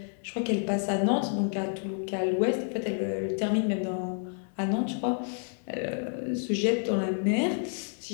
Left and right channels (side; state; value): right; silent; digital silence